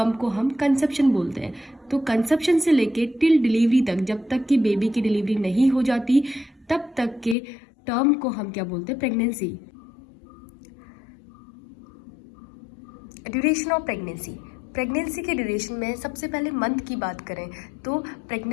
को हम कंसेप्शन बोलते हैं। तो कंसेप्शन से लेके टिल डिलीवरी तक, जब तक कि बेबी की डिलीवरी नहीं हो जाती, तब तक के टर्म को हम क्या बोलते हैं? Pregnancy. Duration of pregnancy. Pregnancy के ड्यूरेशन में सबसे पहले मंथ की बात करें तो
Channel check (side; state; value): right; drops out; at 7.4 s